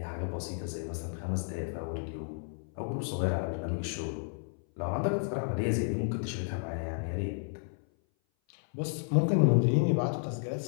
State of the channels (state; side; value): silent; right; 56 dB below the other